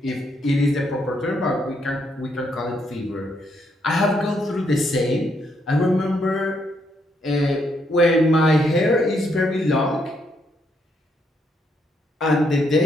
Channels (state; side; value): normal; both; correlation 0.75